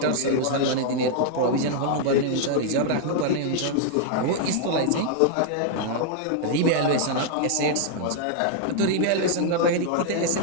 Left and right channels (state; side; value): different; both; correlation -0.01